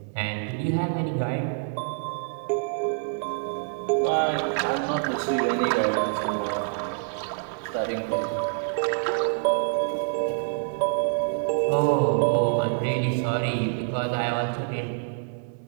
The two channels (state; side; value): silent; left; digital silence